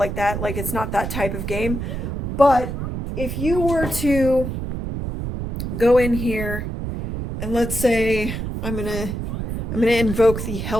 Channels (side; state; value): right; noise; rumble, 5 dB below the sound